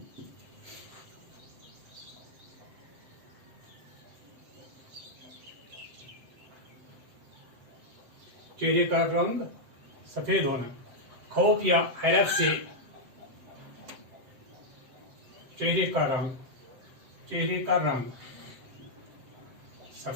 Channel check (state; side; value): late; left; 7.7 ms